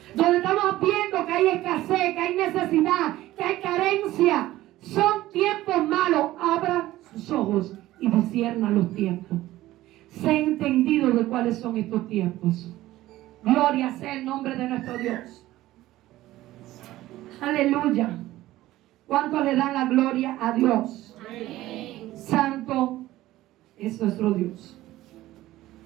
Donde estamos viendo que hay escasez, que hay necesidad, que hay carencia. Son tiempos malos. Abra sus ojos y discierna los tiempos. Sé entendido de cuáles son estos tiempos. Gloria sea el nombre de nuestro Dios. Aleluya. ¿Cuánto le dan la gloria a Dios? Amén. Santo es nuestro Dios.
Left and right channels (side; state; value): left; quieter; 15.9 dB